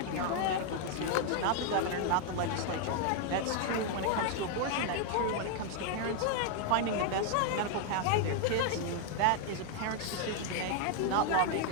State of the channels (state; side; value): different; both; correlation 0.00